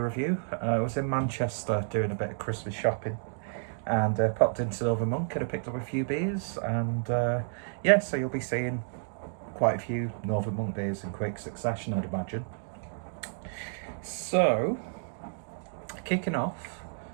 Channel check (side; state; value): left; silent; digital silence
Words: review. I was in Manchester doing a bit of Christmas shopping and popped into Northern Monk and I picked up a few beers and yeah, so you'll be seeing quite a few Northern Monk beers in quick succession, I'd imagine. So, kicking off